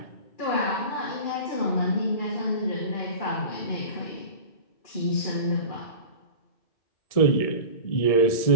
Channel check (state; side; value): late; right; 1.7 ms